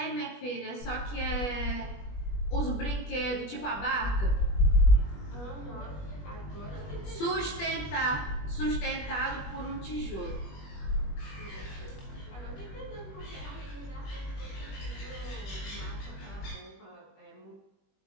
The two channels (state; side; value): late; right; 21 ms